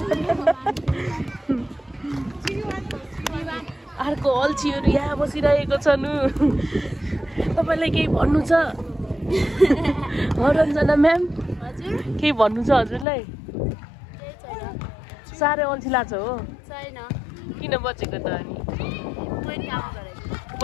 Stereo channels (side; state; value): right; drops out; at 13.1 s